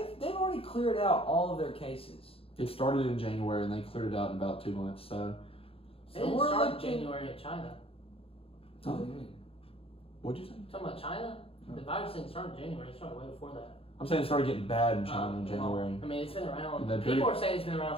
They've already cleared out all of their cases. It started in January, and they cleared it out in about 2 months. So, it didn't we're start looking- January in China. What do you mean? what'd you say? Talking about China, the virus didn't start in January. It started way before that. I'm saying it started getting bad in China in Well, January. I mean, it's been around. Then People pretty- are saying it's been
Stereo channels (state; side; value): late; right; 0.27 ms